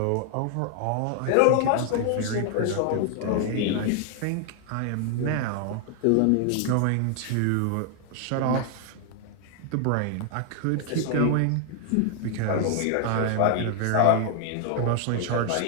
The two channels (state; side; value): different; both; correlation 0.00